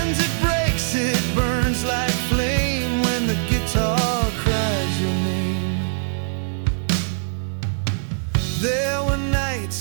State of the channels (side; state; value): left; silent; 64 dB below the other